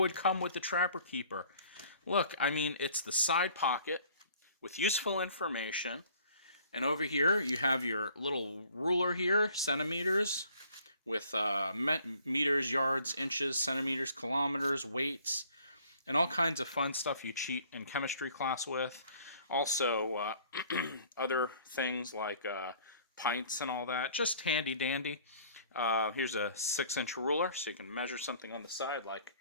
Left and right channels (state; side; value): inverted; both; correlation -0.56